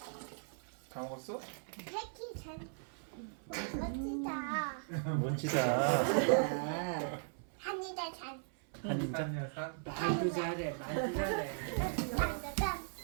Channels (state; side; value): silent; left; 53 dB below the other